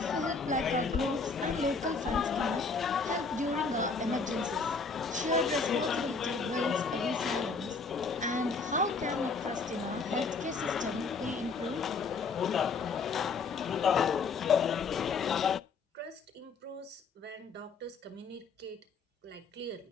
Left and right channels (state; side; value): quieter; right; 4.6 dB